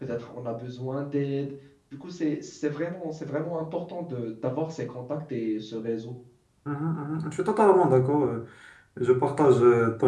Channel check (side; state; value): both; identical; correlation 1.00